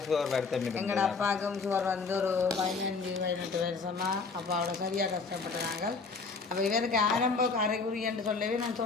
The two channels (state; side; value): quieter; right; 4.5 dB